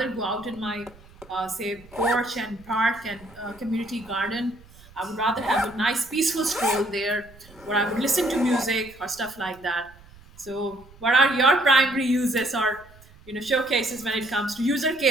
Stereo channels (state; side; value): noise; right; rumble, 24 dB below the sound